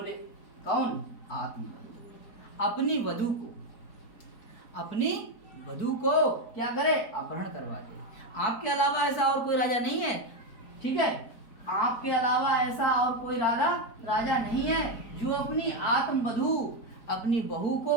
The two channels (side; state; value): right; late; 4.4 ms